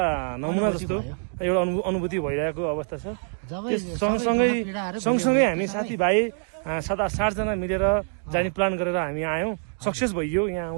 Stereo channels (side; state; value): left; silent; 57 dB below the other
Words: नमुना जस्तो एउटा अनुभूति भइरहेको अवस्था छ। जबै सँगसँगै हामी साथीभाइ 7-8 जना मिलेर जाने प्लान गरेर हामी आयौँ। सक्सेस भइयो